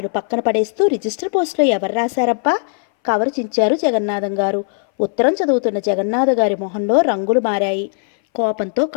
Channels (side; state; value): right; silent; 62 dB below the other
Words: పక్కన పడేస్తూ, రిజిస్టర్ పోస్టులో ఎవరు రాశారబ్బా? కవరు చించారు జగన్నాథం గారు. ఉత్తరం చదువుతున్న జగన్నాథ గారి మొహంలో రంగులు మారాయి. కోపంతో